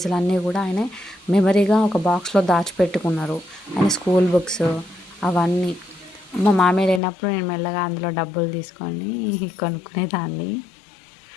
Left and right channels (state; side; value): drops out; right; at 7.0 s